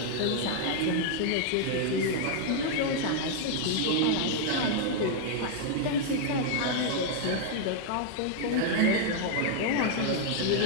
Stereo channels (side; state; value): both; different; correlation 0.00